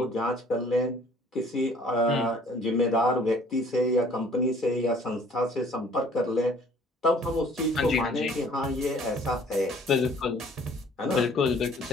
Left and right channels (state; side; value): normal; both; correlation 0.55